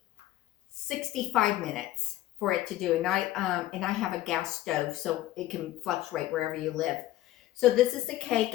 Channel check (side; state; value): right; quieter; 15.1 dB